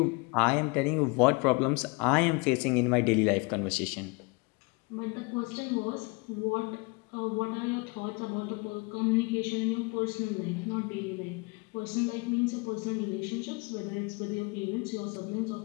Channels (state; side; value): quieter; right; 28.8 dB